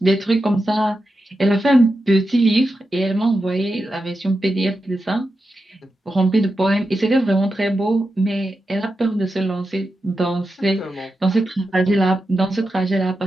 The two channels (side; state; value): both; normal; correlation 0.89